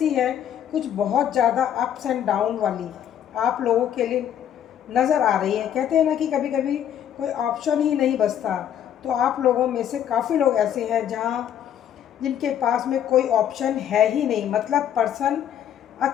है कुछ बहुत ज़्यादा अप्स एंड डाउन वाली आप लोगों के लिए नज़र आ रही है। कहते हैं ना कि कभी कभी कोई ऑप्शन ही नहीं बचता, तो आप लोगों में से काफ़ी लोग ऐसे हैं जहाँ जिनके पास में कोई ऑप्शन है ही नहीं, मतलब पर्सन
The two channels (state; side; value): quieter; right; 9.9 dB